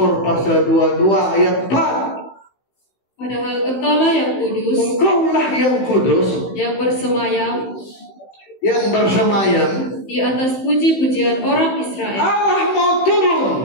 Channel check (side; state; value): right; late; 16 ms